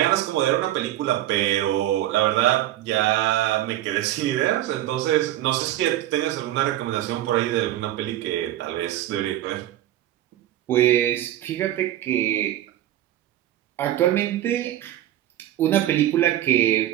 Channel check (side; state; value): left; quieter; 13.5 dB